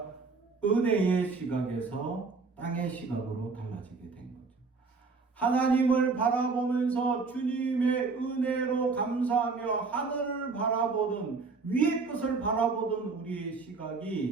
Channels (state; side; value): quieter; left; 4.4 dB